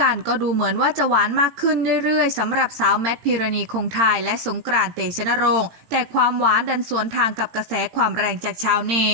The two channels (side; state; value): left; late; 18 ms